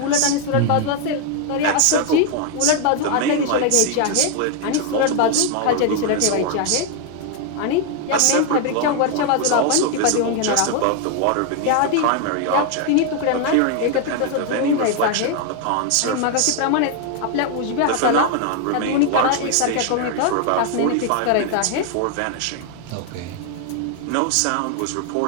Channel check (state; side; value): different; both; correlation 0.00